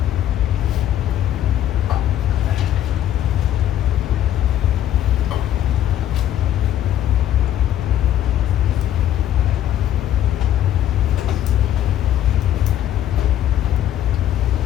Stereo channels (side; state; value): right; quieter; 11.4 dB